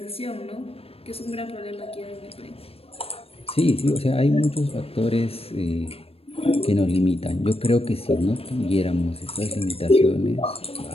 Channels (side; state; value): right; late; 0.28 ms